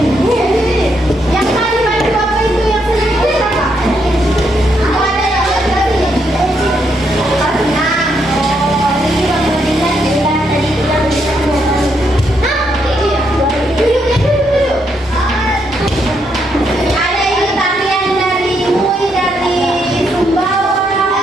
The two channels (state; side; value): normal; both; correlation 0.77